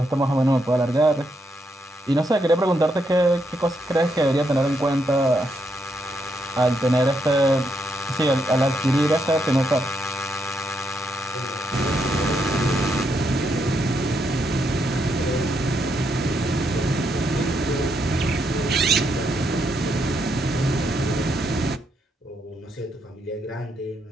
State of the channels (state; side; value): normal; both; correlation 0.78